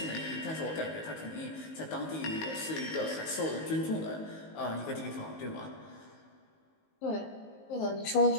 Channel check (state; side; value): late; right; 19 ms